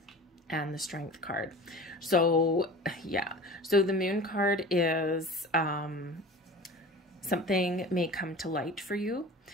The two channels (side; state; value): both; normal; correlation 0.38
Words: and the Strength card. So yeah, so the moon card is something may come to light for you.